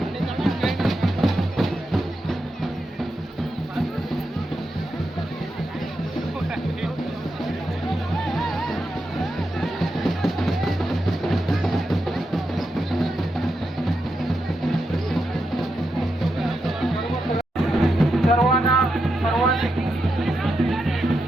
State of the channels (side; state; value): both; normal; correlation 0.86